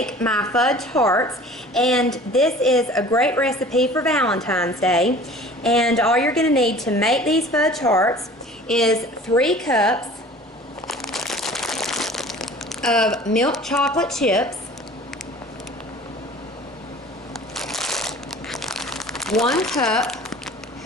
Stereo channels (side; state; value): both; normal; correlation 0.45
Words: my fudge hearts. And this is a great recipe for Valentine's Day. And all you're going to need to make these fudge hearts is 3 cups of milk chocolate chips, 1 cup